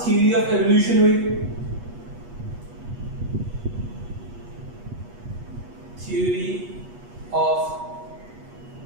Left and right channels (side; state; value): left; late; 8.3 ms